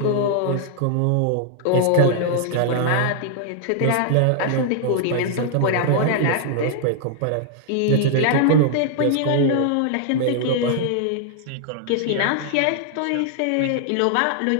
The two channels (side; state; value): both; different; correlation 0.00